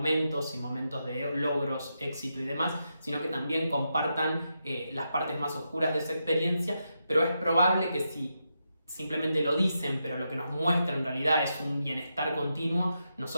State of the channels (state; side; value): inverted; both; correlation -0.85